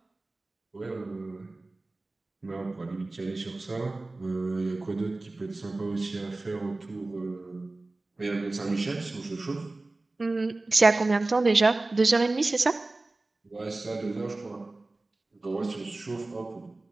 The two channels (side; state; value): left; quieter; 3.1 dB